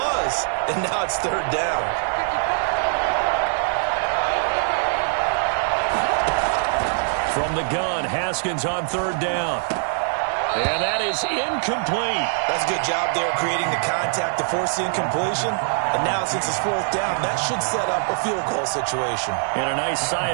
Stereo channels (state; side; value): silent; left; digital silence